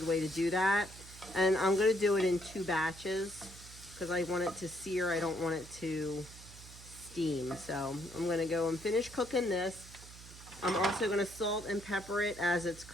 way to do that. And I'm going to do it in 2 batches because I want it to sear. I don't want it to steam. So I'm going to go and finish cooking this. I'm also going to salt and pepper it as it's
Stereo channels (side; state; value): right; noise; hum, 17 dB below the sound